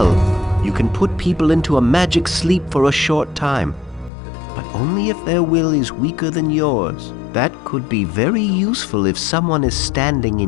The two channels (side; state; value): right; drops out; at 4.1 s